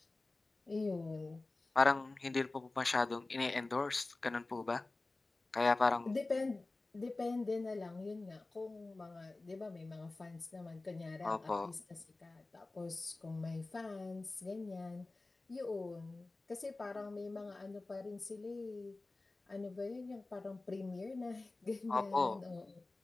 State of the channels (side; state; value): right; quieter; 3.2 dB